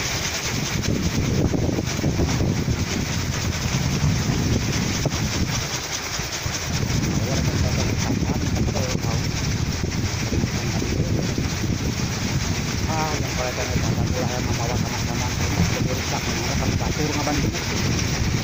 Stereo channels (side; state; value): both; identical; correlation 1.00